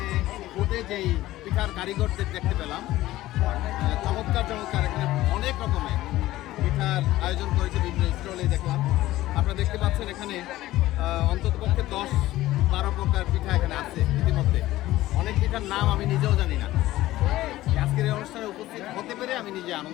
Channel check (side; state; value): right; quieter; 16.1 dB